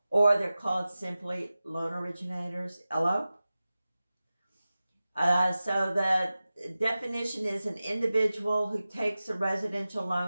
or they're called simply loan originators, LO. So the definition is an individual who takes a residential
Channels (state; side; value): inverted; both; correlation -0.96